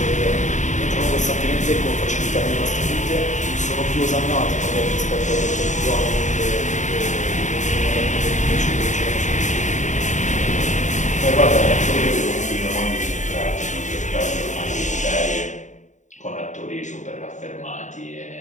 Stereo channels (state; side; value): late; right; 0.35 ms